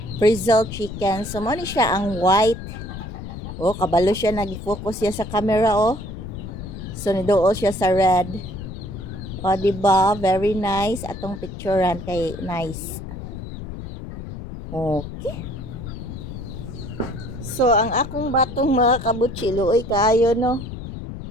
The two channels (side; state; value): left; noise; rumble, 9 dB below the sound